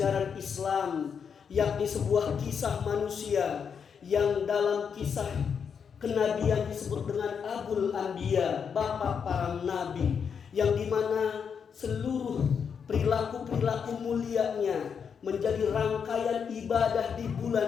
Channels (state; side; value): quieter; right; 6.8 dB